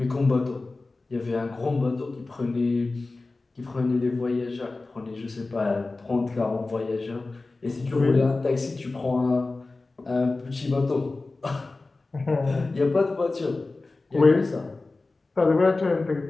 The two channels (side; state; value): right; quieter; 3.4 dB